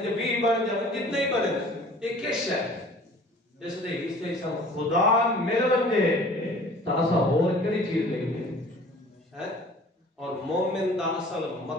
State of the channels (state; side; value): normal; both; correlation 0.48